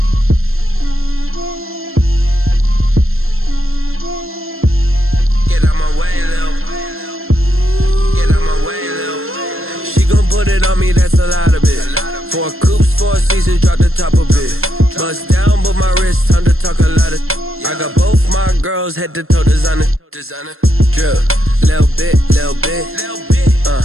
a lot of it. 4 coops, 4 seasons, drop the top a bit. Bust down, but my wrist, time to talk a lot of. I got both my girls head to toe designer. Drip, little bit.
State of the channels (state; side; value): late; left; 0.61 ms